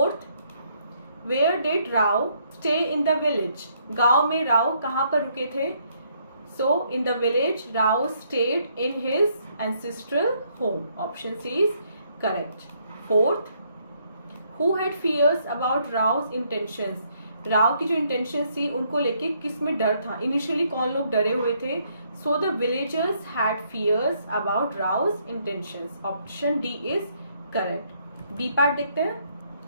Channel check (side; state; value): both; inverted; correlation -0.70